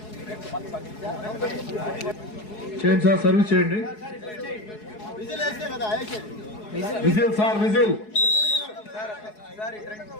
చేయండి సార్, సర్వీస్ చేయండి. Whistle sir, whistle.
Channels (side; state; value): right; late; 4.7 ms